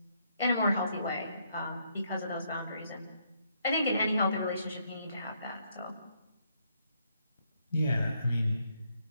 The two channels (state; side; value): inverted; both; correlation -0.73